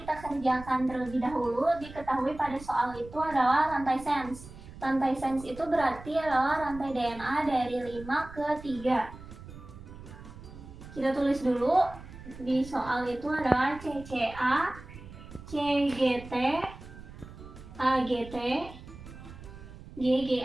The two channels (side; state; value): right; noise; rumble, 16 dB below the sound